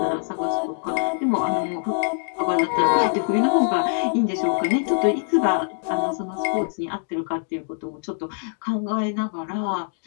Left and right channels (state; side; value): silent; right; digital silence